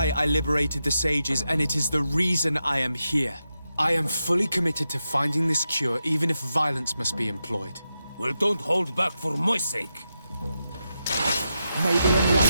I liberated the sages, and it is the reason I am here. I am fully committed to finding this cure, even if violence must be employed. Well, don't hold back for my sake. May the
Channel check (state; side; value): inverted; both; correlation -0.88